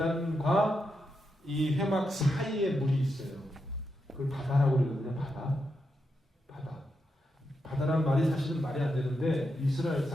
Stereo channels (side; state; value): both; normal; correlation 0.85